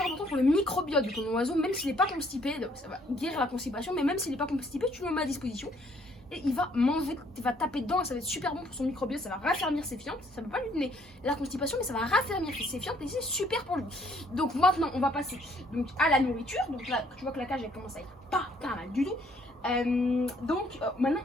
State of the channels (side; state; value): both; normal; correlation 0.64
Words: important pour le microbiote de ton oiseau, même s'il n'est pas constipé, ça va guérir la constipation, mais même s'il n'est pas constipé, tu le mets à disposition. Et il va manger, il va taper dedans et ça va être super bon pour son microbiote, ça va raffermir ses fientes. Ça ne va pas lui donner la constipation, mais ça va raffermir ses fientes et c'est super pour lui. Donc maintenant, on va passer donc, à la nourriture. Donc là, tu vois que la cage elle commence à être pas mal du tout. Maintenant,